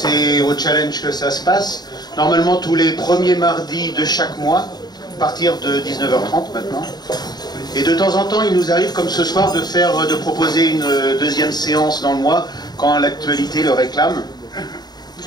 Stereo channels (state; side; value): late; right; 0.20 ms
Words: au Challenge que ça se passe. Normalement tous les premiers mardis de chaque mois, à partir de 19h30 maintenant. Et de temps en temps, il nous arrive, comme ce soir, de proposer une deuxième séance dans le mois, quand l'actualité le réclame.